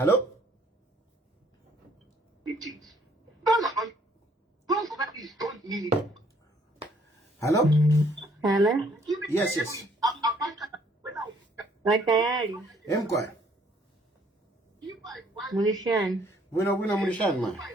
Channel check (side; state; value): both; normal; correlation 0.63